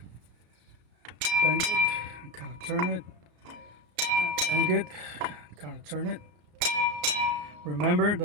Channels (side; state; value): left; late; 34 ms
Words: bang it, and kind of turn it, Bang it, kind of turn it. Remember